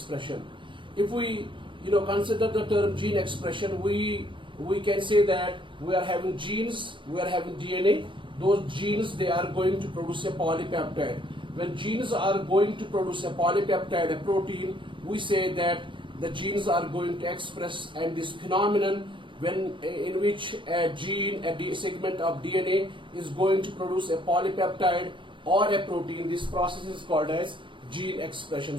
If we consider the term gene expression, we can say that we are having genes, we are having DNA. Those genes, they are going to produce a polypeptide. When genes are going to produce a polypeptide, a protein, we say that the genes are going to express, and this phenomenon in which a gene, a segment of DNA is going to produce a polypeptide or a protein, this process is called as gene expression.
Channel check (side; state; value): left; late; 0.24 ms